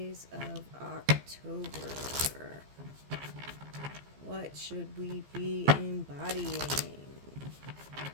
of October. What should we be embodying?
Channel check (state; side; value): late; left; 15 ms